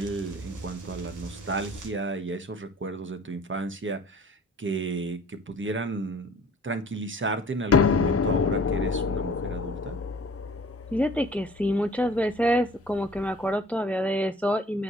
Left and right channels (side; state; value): both; normal; correlation 0.49